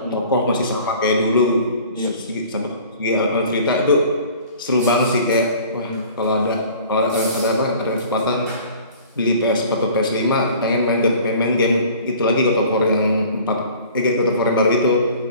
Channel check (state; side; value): inverted; both; correlation -0.48